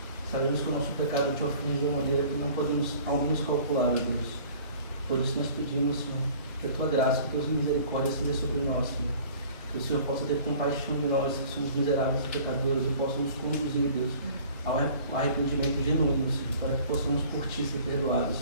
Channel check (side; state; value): both; inverted; correlation -0.49